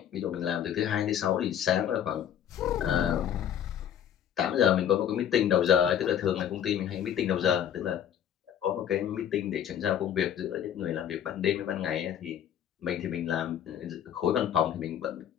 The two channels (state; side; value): quieter; right; 9.7 dB